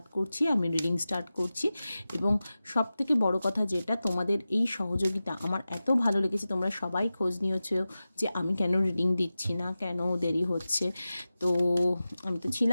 করছি, আমি রিডিং স্টার্ট করছি। এবং সব থেকে বড় কথা যেটা, তোমাদের এই সহযোগিতা আমার এত ভালো লেগেছে, তোমরা সবাই খোঁজ নিয়েছো যে আমি কেন রিডিং দিচ্ছি না, কেন দেরি হচ্ছে। তো আমি তো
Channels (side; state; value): both; inverted; correlation -0.95